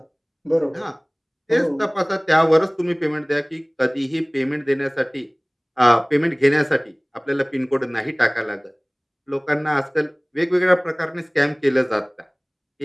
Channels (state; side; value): identical; both; correlation 1.00